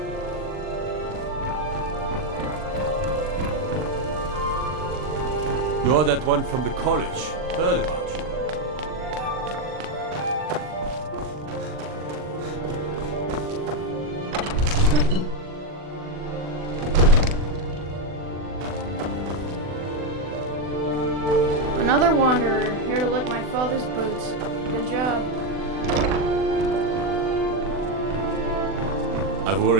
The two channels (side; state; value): left; late; 40 ms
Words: You're that one from the college. Heard about you. Another wanderer, here to lick my father's boots. Good job. I